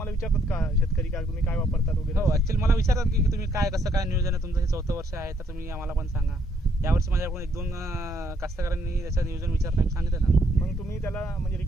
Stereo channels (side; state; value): both; normal; correlation 0.71